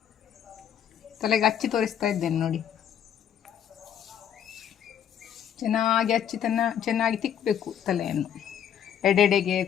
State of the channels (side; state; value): right; quieter; 9.1 dB